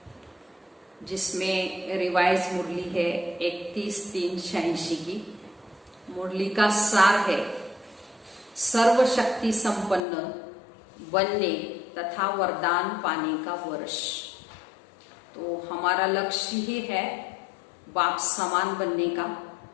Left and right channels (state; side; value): drops out; right; at 10.0 s